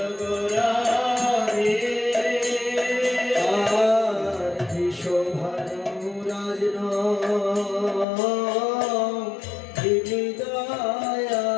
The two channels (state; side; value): drops out; right; at 8.1 s